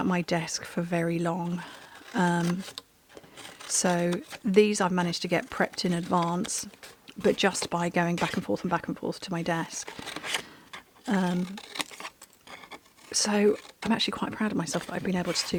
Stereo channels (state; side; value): identical; both; correlation 1.00